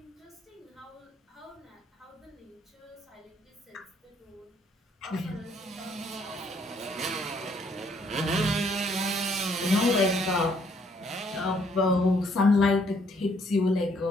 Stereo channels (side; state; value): both; normal; correlation 0.67